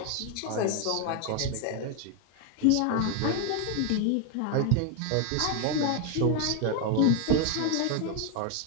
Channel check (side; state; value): both; different; correlation 0.01